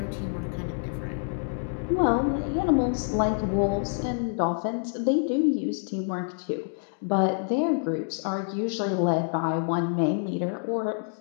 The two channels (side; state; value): right; silent; digital silence